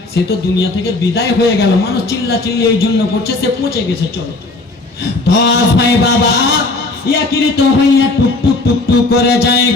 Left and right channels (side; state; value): right; quieter; 3.2 dB